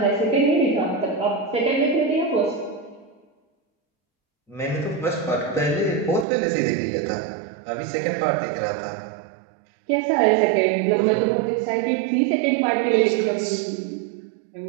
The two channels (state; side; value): drops out; left; at 6.2 s